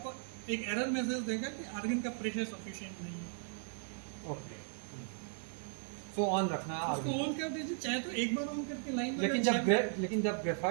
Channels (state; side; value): silent; left; 53 dB below the other